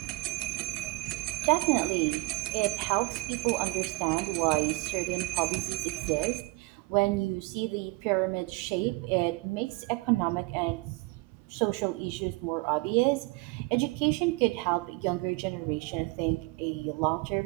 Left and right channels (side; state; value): left; quieter; 24.9 dB